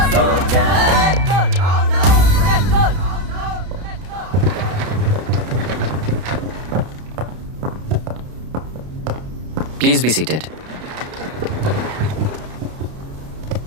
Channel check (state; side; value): late; left; 32 ms